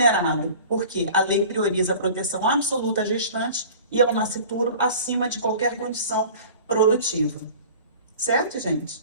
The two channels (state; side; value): inverted; both; correlation -0.42